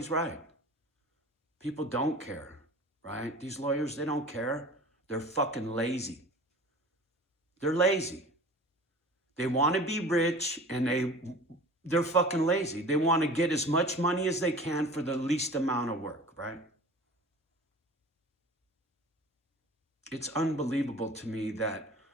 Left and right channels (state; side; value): normal; both; correlation 0.41